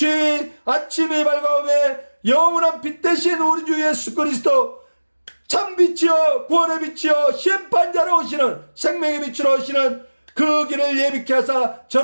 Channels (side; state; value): both; inverted; correlation -1.00